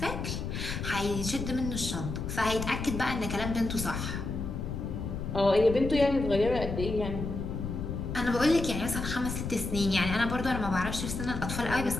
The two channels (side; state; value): left; noise; rumble, 5 dB below the sound